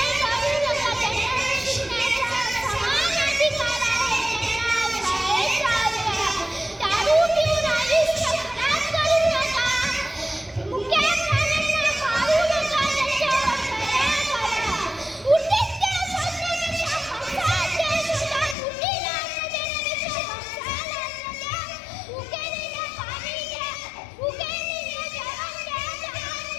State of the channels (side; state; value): right; drops out; at 18.6 s